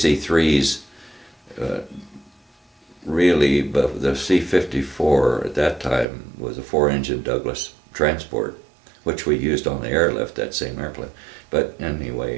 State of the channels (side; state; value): left; drops out; at 6.1 s